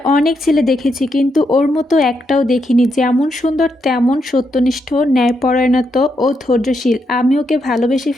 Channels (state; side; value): normal; both; correlation 0.80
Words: অনেক ছেলে দেখেছি, কিন্তু ওর মতো একটাও দেখিনি। যেমন সুন্দর তেমন সত্যনিষ্ঠ, ন্যায়পরায়ণত ও ধৈর্যশীল। আমি ওকে ভালোবেসে